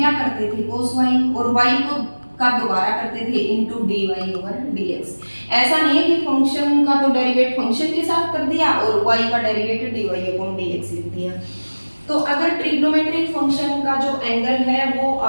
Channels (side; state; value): both; inverted; correlation -1.00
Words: करते थे, cos y, और y को का दोबारा करते थे इनटू dy ओवर dx। ऐसा नहीं है कि फंक्शन का तो डेरिवेट फंक्शन के साथ कर दिया और y का डेरिवेट dy अपॉन dx लिख दिया। तो अगर ट्रिग्नोमेट्रिक फंक्शन का जो एंगल है वो